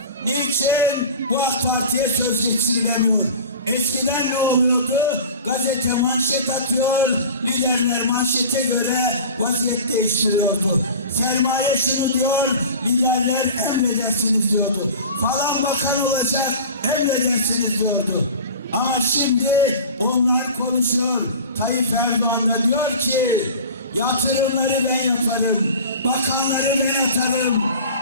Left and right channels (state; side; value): inverted; both; correlation -0.37